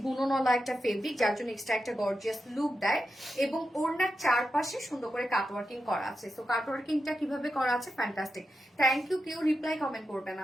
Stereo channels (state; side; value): normal; both; correlation 0.89